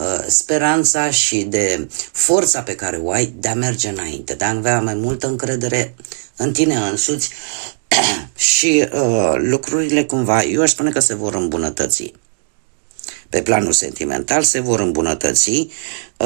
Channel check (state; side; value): silent; left; digital silence